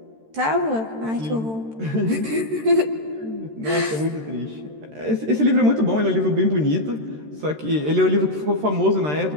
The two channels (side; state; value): left; late; 13 ms